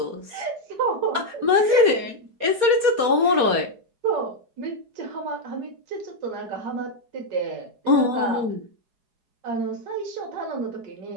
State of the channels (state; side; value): late; left; 4.2 ms